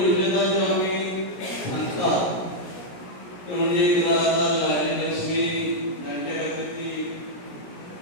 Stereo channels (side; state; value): right; late; 17 ms